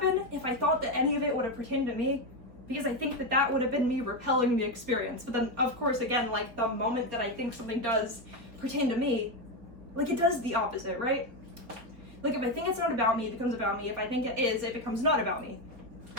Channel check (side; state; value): left; late; 4.4 ms